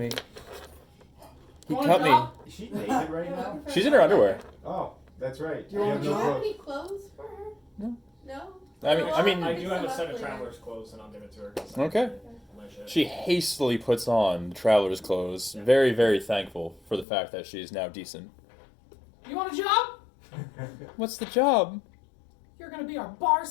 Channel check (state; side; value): drops out; right; at 17.1 s